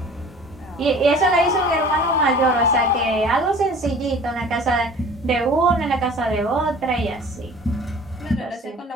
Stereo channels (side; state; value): both; normal; correlation 0.45